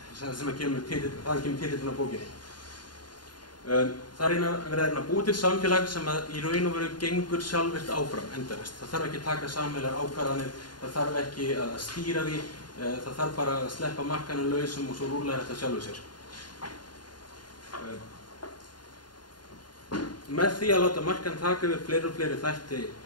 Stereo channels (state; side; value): late; right; 0.71 ms